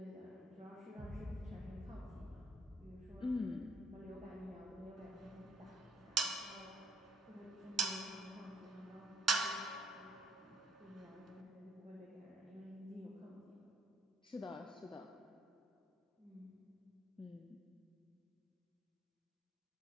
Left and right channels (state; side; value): normal; both; correlation 0.66